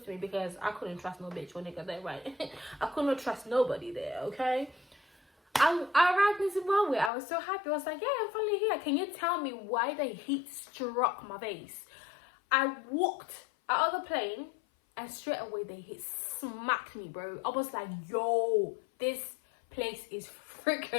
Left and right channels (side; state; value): right; drops out; at 7.1 s